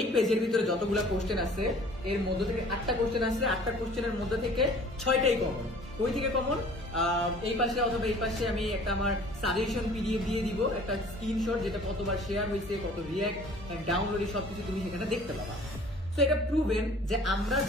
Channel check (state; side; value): normal; both; correlation 0.50